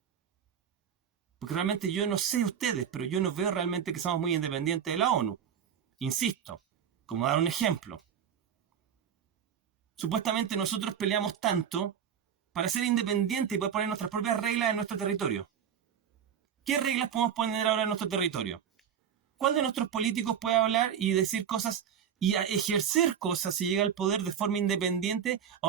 Porque realmente yo no sé ustedes, pero yo no veo realmente que somos muy independientes de la ONU. Insisto, como dar un ejemplo. Supuestamente nosotros peleamos tanto para ser independientes y poder poner nuestras propias reglas en nuestro territorio. ¿Qué reglas podemos poner ahora en nuestro territorio? ¿Cuál de nuestros políticos puede hablar y decir cosas y ejercer cosas si llega al poder de forma independiente a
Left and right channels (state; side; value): quieter; left; 8.3 dB